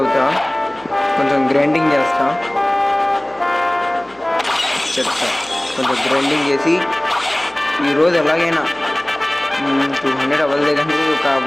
కొంచెం గ్రైండింగ్ చేస్తా. కొంచెం గ్రైండింగ్ చేసి ఈరోజు ఎలాగైనా 200 అవ్వలేదంటే ఒక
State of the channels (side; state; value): left; noise; hum, 29 dB below the sound